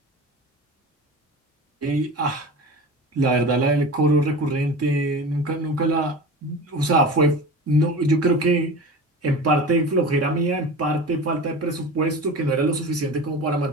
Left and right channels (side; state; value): both; normal; correlation 0.32